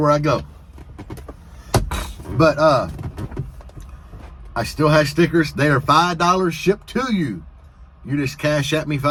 I go. But I still have stickers. They are $5 shipped to you. You just Cash App me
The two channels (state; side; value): identical; both; correlation 1.00